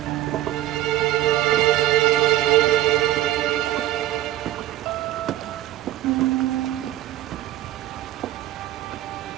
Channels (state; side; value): quieter; left; 14.5 dB